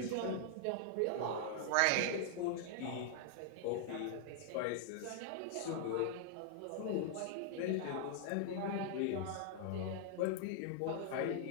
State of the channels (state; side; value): different; both; correlation -0.01